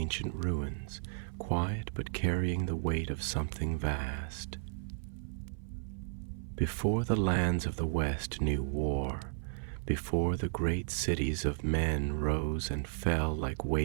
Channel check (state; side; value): silent; left; 55 dB below the other